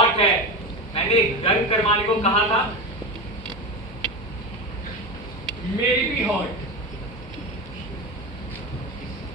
है। मैंने गर्म करवाने को कहा था। मेरी भी हॉट।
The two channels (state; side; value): normal; both; correlation 0.20